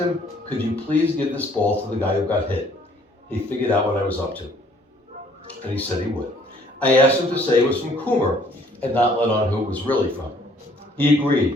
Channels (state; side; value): normal; both; correlation 0.60